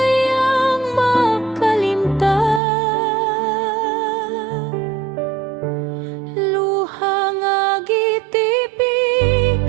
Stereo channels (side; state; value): left; drops out; at 2.6 s